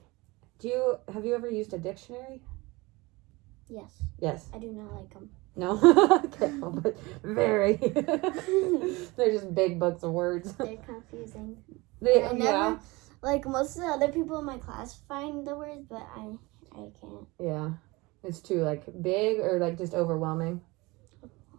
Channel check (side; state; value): left; quieter; 23.2 dB